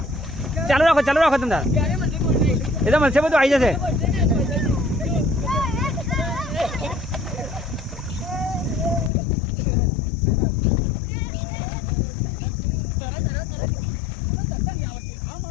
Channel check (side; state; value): right; drops out; at 9.1 s